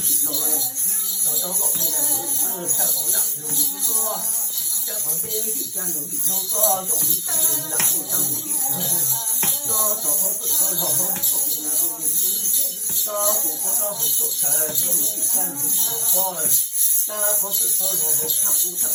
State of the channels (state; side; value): identical; both; correlation 1.00